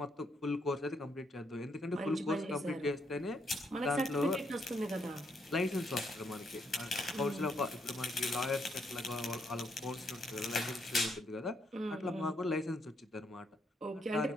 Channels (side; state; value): both; normal; correlation 0.75